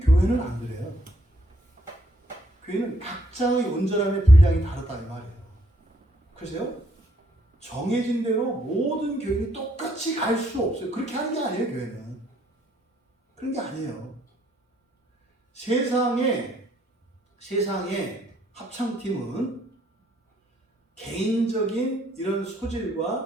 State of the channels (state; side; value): normal; both; correlation 0.69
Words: 안 그래요. 교회는 각자의 온전함의 분량이 다르다 이 말이에요. 그래서요, 정해진 대로 모든 교인이 똑같이 똑같이 갈 수 없어요. 그렇게 하는 게 아니에요, 교회는. 그런 게 아니에요. 세상의 합창팀은 개인적인 이런